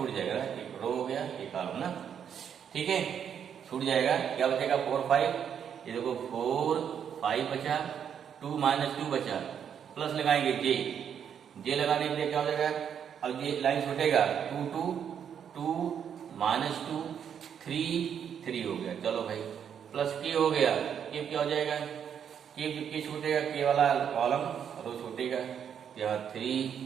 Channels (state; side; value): quieter; left; 8.2 dB